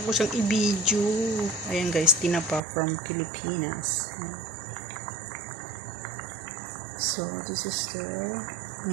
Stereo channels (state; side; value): drops out; left; at 2.6 s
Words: ko siyang i-video. Ayan, guys, tinapa from Pilipinas. So this is the